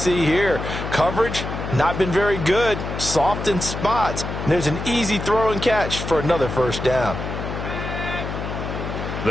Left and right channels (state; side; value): noise; left; hum, 6 dB below the sound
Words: here. Coverage, not been very good, soft in spots. And there's an easy throw and catch for another first down.